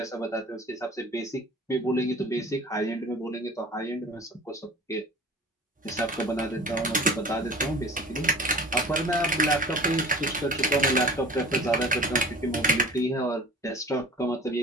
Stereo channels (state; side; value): normal; both; correlation 0.43